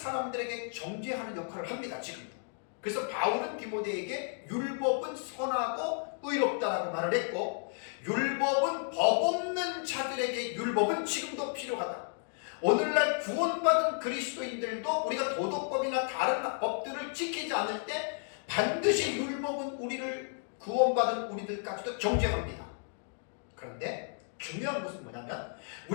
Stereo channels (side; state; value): right; silent; 56 dB below the other